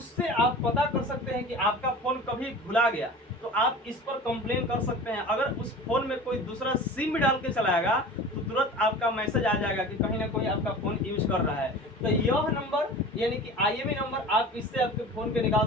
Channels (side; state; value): both; normal; correlation 0.38